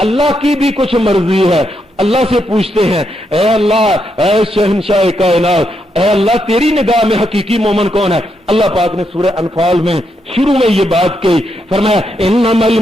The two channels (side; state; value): both; normal; correlation 0.80